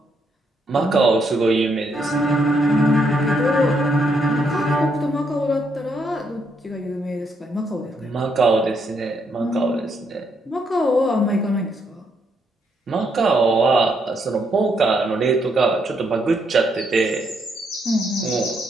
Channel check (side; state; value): both; normal; correlation 0.75